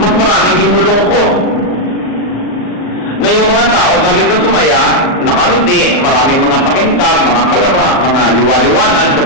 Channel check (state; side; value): late; right; 39 ms